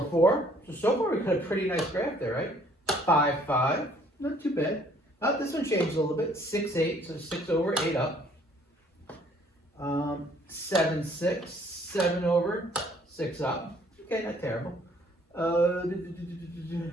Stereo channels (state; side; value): normal; both; correlation 0.60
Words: 4. So far we got a pretty nice graph there, right? 5, 5. Not too bad. Oh, this one changed a little bit. 6, 8. So 6 over, 8 up. 7, 6. 7 over, 6 up. Okay, not terrible.